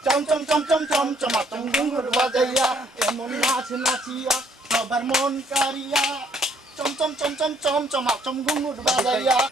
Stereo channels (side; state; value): both; normal; correlation 0.65